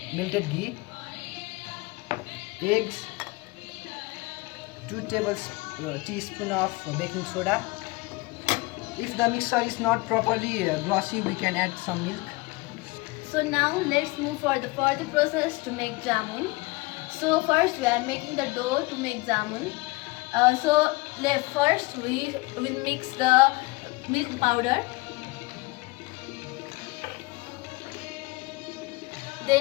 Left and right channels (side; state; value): right; quieter; 23.8 dB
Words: melted ghee, eggs, 2 teaspoons of baking soda. If the mixture is not properly glossy, we can add some milk. So now let's move for the further process to make jamun. So first we are making the dough to make jamun. First we will mix the milk powder.